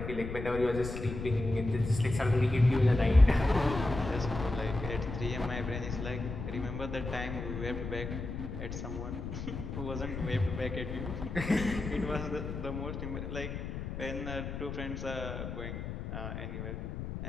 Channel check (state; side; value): noise; left; rumble, 6 dB below the sound